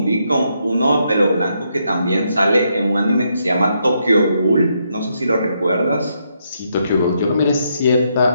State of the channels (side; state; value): both; inverted; correlation -0.78